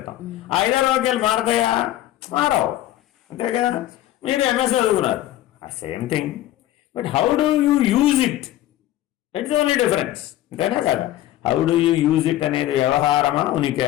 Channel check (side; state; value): right; quieter; 14.2 dB